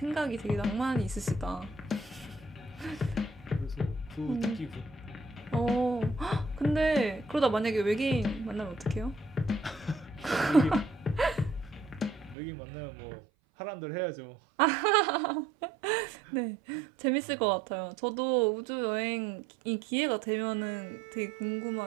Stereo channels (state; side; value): drops out; left; at 12.4 s